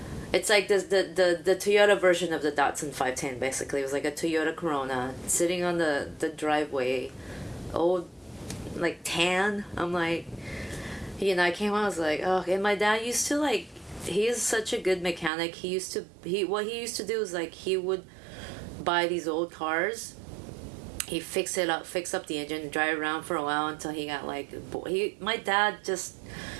it's like this, the Toyota version of the Datsun 510, basically. It was like a Toyota Corona sitting on the driveway, old, like tan. I'm like, you know, I came home, I was like, oh. And my dad used to like, he is such a good mechanic. What he used to do is like, he would buy these old cars, he fix up the engine, drive around for a while until he got like, my dad just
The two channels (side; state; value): left; drops out; at 15.3 s